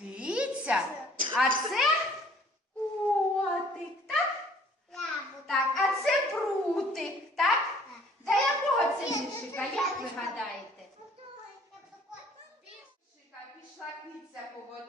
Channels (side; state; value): both; normal; correlation 0.57